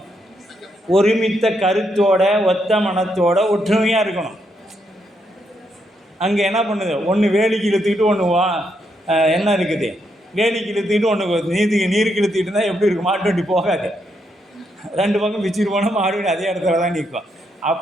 ஒருமித்த கருத்தோட ஒத்த மனத்தோட ஒற்றுமையாக இருக்கணும். அங்கே என்ன பண்ணுது? ஒன்று வேலிக்கு இழுத்துக்கிட்டு ஒன்று என்ன இருக்குது? வேலிக்கு இழுத்துக்கிட்டு ஒன்று நீருக்கு இழுத்துக்கிட்டு இருந்தால் எப்படி இருக்கும்? மாட்டு வண்டி போகாது. 2 பக்கம் பிச்சுட்டு போனால் மாடு அதே இடத்துல தான் நிற்கும்.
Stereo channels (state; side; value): normal; both; correlation 0.78